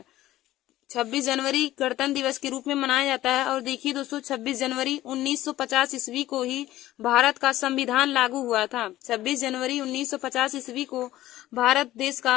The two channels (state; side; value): quieter; right; 15.1 dB